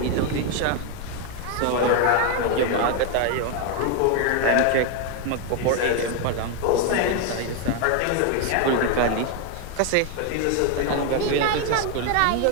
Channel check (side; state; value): both; different; correlation 0.01